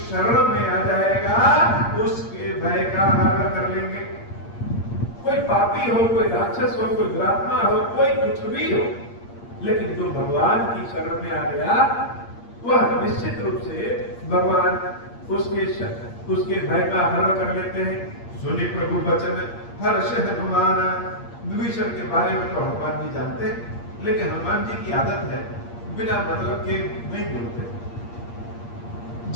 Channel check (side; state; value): right; late; 8.6 ms